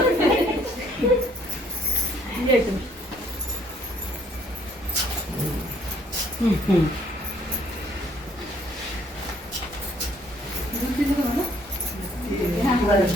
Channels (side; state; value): both; normal; correlation 0.64